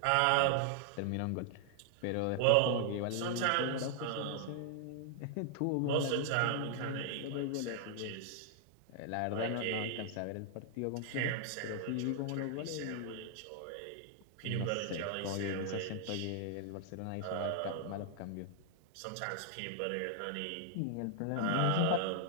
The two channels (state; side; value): different; both; correlation -0.01